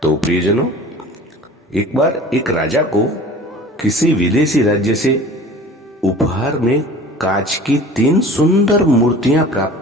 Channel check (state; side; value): normal; both; correlation 0.43